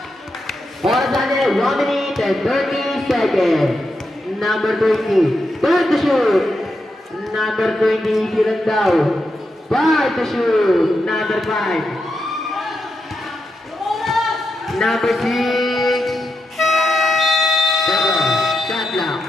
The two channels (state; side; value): normal; both; correlation 0.86